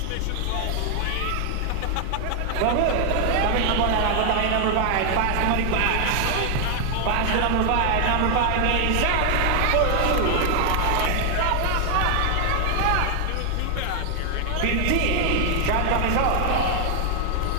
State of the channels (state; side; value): different; both; correlation 0.00